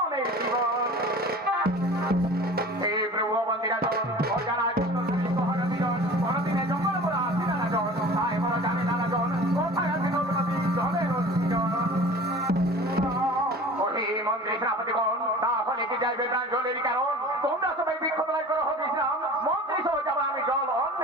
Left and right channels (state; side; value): normal; both; correlation 0.41